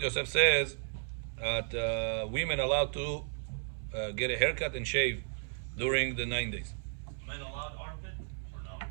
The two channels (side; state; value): left; silent; 55 dB below the other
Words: Yosef says that women allowed to get a haircut and shave during the 9 days. Men allowed armpit or